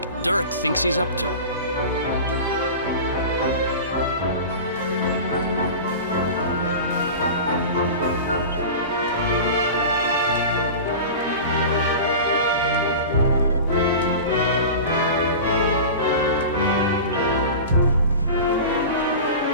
Dirk thinks he's up to.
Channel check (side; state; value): both; inverted; correlation -0.32